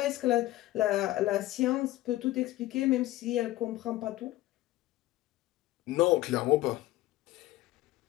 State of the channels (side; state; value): right; quieter; 16.5 dB